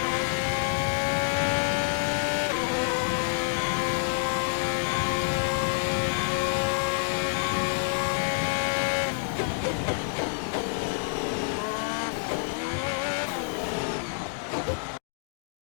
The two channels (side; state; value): right; silent; digital silence